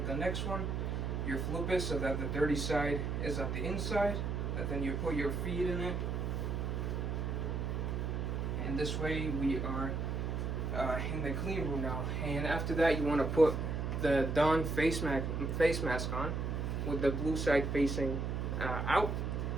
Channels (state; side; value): noise; right; hum, 1 dB below the sound